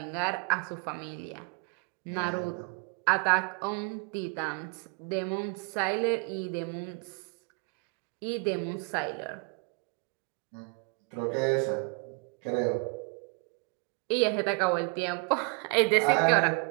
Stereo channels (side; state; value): left; quieter; 34.2 dB